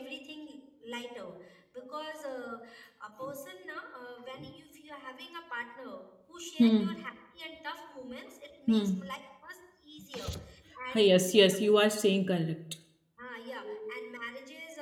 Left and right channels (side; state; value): both; identical; correlation 1.00